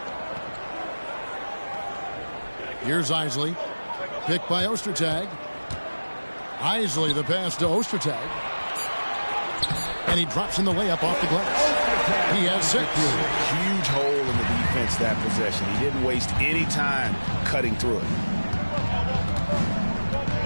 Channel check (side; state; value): both; inverted; correlation -1.00